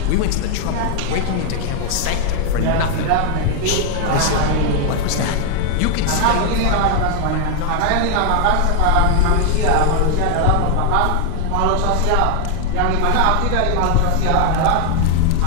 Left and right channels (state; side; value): different; both; correlation 0.00